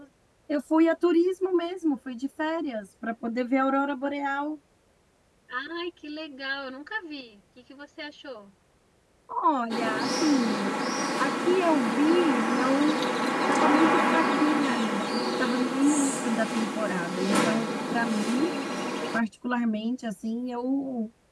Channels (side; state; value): both; identical; correlation 1.00